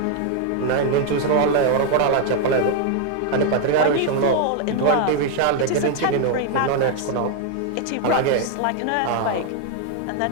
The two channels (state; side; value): different; both; correlation 0.00